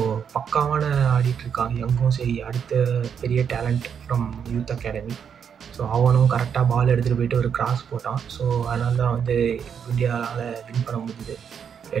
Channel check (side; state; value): left; quieter; 7.5 dB